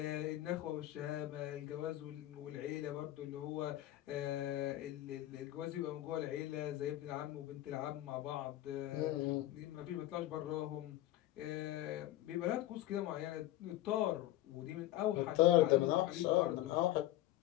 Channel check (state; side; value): quieter; right; 14.8 dB